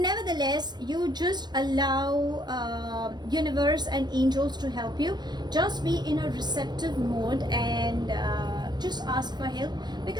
you just allow universe and angels to help you. Just be in a receptive mode and just ask for help,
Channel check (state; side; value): late; left; 0.21 ms